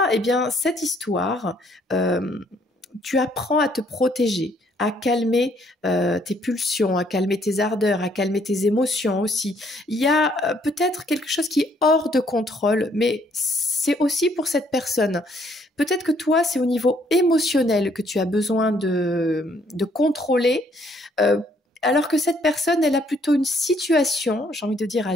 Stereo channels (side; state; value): both; normal; correlation 0.67